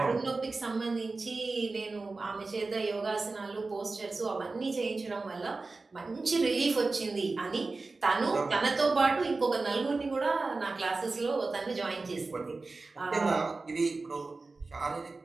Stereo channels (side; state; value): left; quieter; 3.7 dB